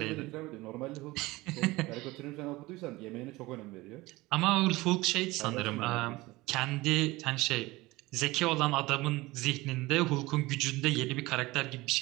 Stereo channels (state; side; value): quieter; left; 20.5 dB